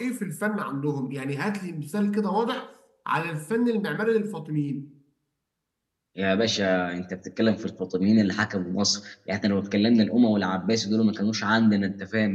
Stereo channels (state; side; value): identical; both; correlation 1.00